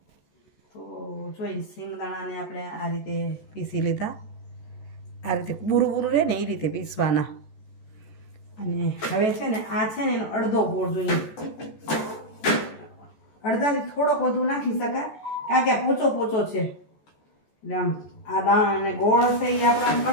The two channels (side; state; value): right; late; 14 ms